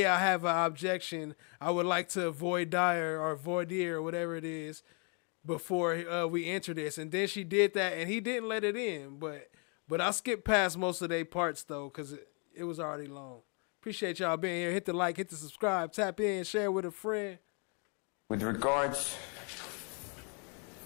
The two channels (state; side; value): quieter; right; 37.2 dB